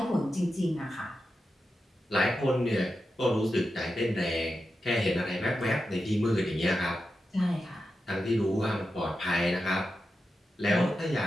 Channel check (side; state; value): both; normal; correlation 0.90